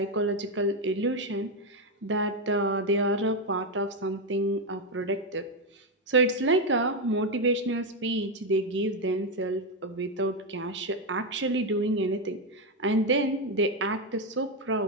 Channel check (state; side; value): normal; both; correlation 0.06